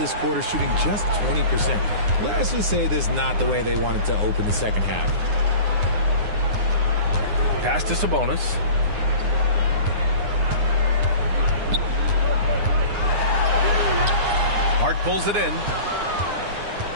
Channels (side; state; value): left; late; 9.7 ms